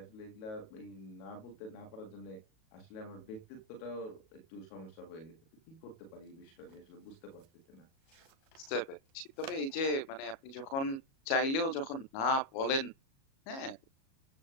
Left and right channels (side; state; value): right; late; 37 ms